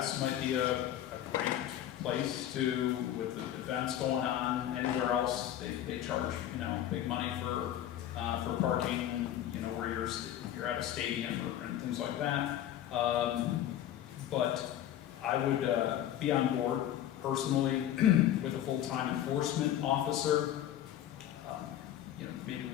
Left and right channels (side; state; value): right; quieter; 11.8 dB